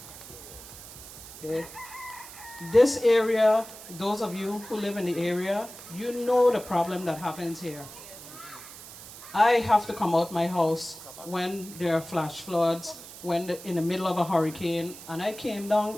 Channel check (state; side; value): noise; right; hiss, 15 dB below the sound